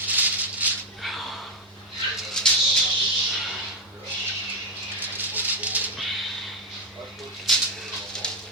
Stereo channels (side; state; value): both; normal; correlation 0.06